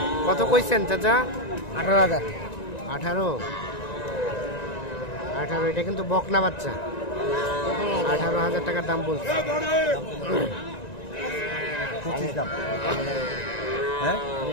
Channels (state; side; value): late; right; 1.9 ms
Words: কত কইছেন চাচা? 18,000। 18 এটা কিন্তু বকনা বাচ্চা। 18,000 টাকার দাম বলছে। 25 দাম। হ্যাঁ